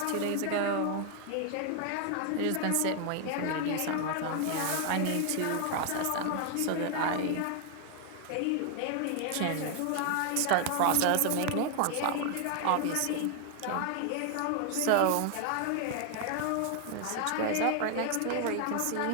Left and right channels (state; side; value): different; both; correlation 0.00